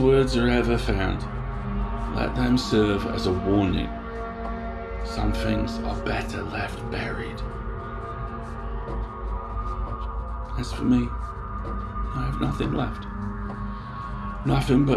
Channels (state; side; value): identical; both; correlation 1.00